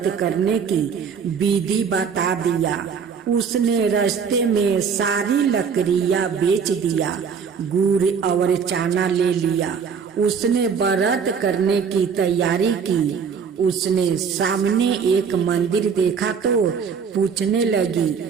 करने की विधि बता दिया। उसने रास्ते में सारी लकड़ियां बेच दिया, गुड़ और चना ले लिया। उसने व्रत करने की तैयारी की। उसने सामने एक मंदिर देखा तो पूछने लगी,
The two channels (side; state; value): left; quieter; 6.3 dB